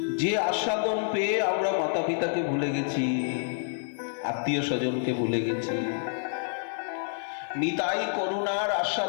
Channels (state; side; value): silent; right; digital silence